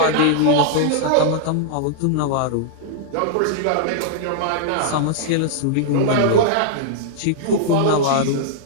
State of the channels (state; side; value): different; both; correlation -0.01